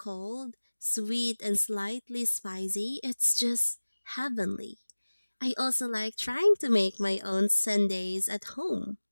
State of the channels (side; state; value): both; inverted; correlation -1.00